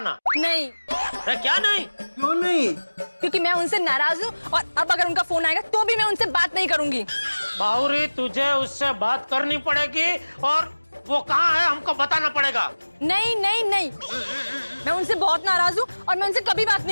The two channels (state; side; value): inverted; both; correlation -1.00